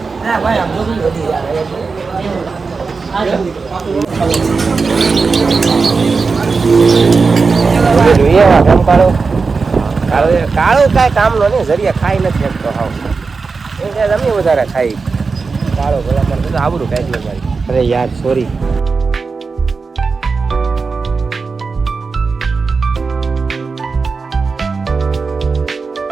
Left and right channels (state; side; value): quieter; left; 4.5 dB